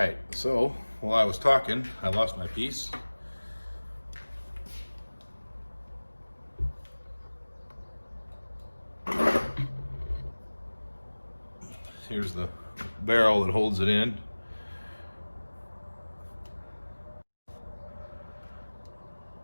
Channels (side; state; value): both; inverted; correlation -1.00